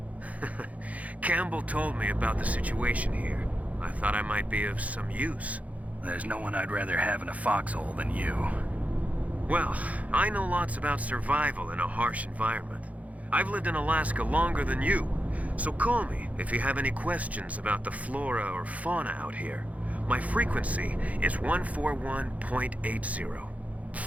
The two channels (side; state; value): left; late; 0.069 ms